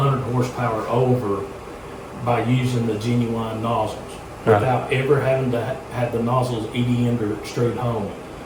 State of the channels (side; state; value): both; identical; correlation 1.00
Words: horsepower over by using the genuine nozzles without ever having to have the nozzles EDM'd or extrude home.